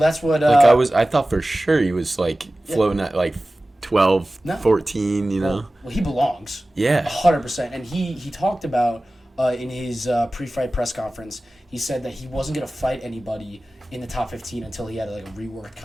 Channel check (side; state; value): both; normal; correlation 0.97